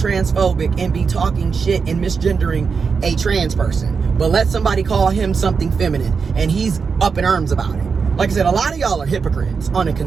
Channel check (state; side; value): quieter; left; 5.5 dB